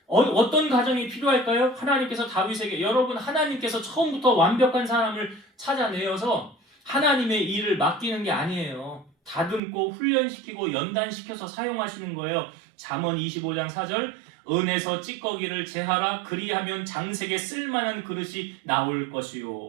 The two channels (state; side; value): drops out; left; at 9.6 s